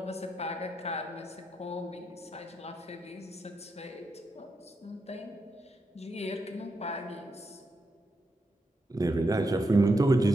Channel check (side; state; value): both; normal; correlation 0.84